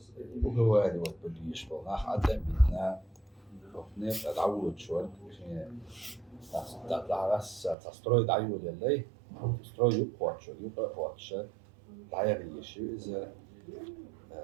وجواري والبليش بالناخ عدم بيتنا وفنيت أدعوه شوال تعرس تستروي دعيو للي تستروي يقوى قواتش دعيري شو إذا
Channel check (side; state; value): left; drops out; at 7.8 s